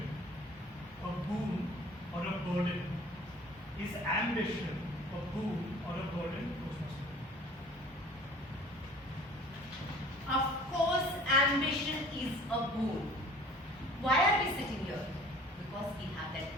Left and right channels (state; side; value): normal; both; correlation 0.48